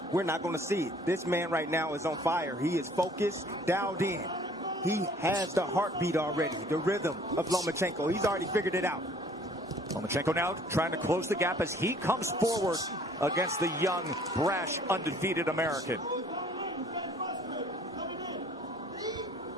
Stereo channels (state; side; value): normal; both; correlation 0.55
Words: we're not going to see it. This man right now is on fire. He is focused, dialed in. He has the heartbeat already, the rhythm of Lomachenko. He's already figured it out. Lomachenko now trying to close the gap as he comes forward against the young, brash, undefeated American.